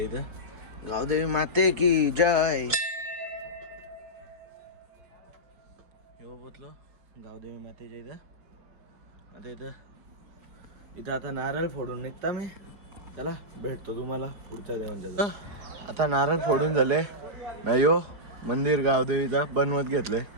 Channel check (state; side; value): late; left; 4.7 ms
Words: इथं. गावदेवी माते की जय. हो, पोचलो गावदेवी मातेच्या इथं. आता इथं आता नारळ फोडून निघता मी. चला भेटतो तुम्हाला पुढच्या देवांच्या जवळ. आता नारळ फोडून झाले. नाही हो, मंदिर गावदेवीचा बनवत घेतले.